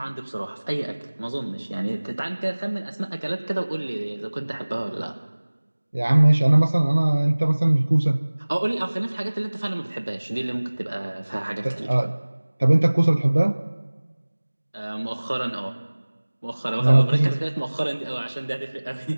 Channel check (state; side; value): inverted; both; correlation -1.00